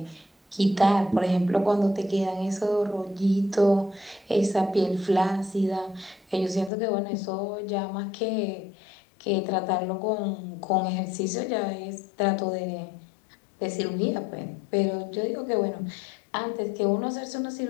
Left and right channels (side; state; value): right; drops out; at 6.7 s